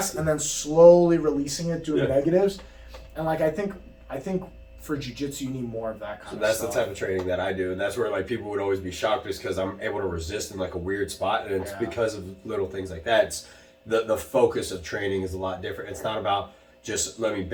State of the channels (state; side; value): identical; both; correlation 1.00